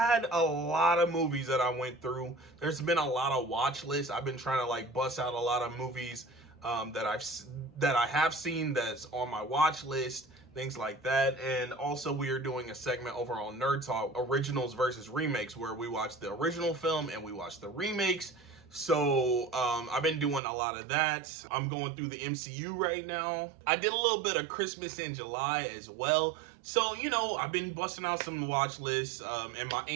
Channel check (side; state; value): left; drops out; at 20.4 s